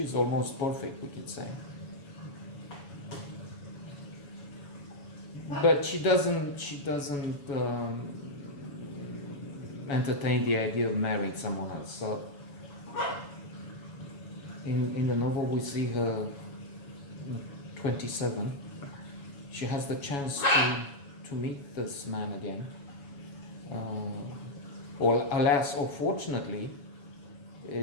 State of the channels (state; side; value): late; right; 7.1 ms